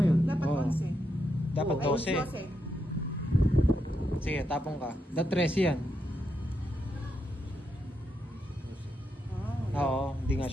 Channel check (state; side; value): normal; both; correlation 0.82